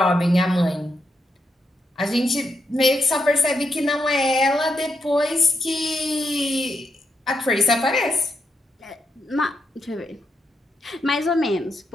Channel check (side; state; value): both; normal; correlation 0.82